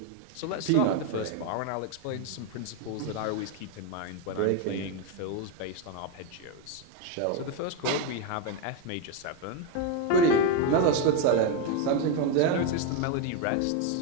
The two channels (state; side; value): different; both; correlation 0.02